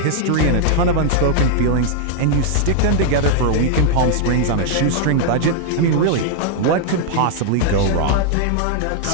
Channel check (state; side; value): different; both; correlation -0.01